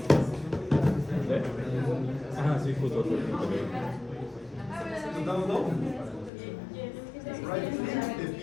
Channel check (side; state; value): right; drops out; at 6.3 s